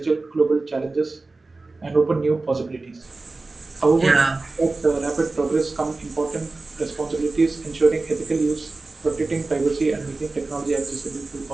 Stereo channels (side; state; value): left; quieter; 3.5 dB